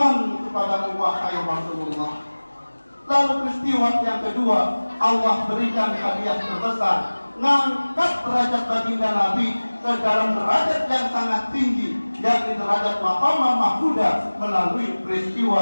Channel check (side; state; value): both; inverted; correlation -1.00